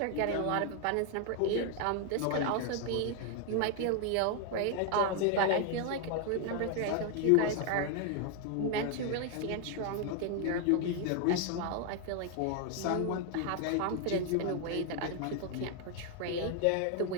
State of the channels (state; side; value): different; both; correlation 0.00